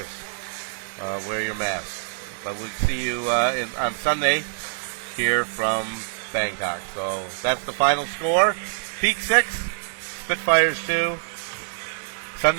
Wear your mask. But we'll see you on Sunday here from Bangkok. So that's the final score. Peak 6, Spitfires 2.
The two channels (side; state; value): left; silent; 62 dB below the other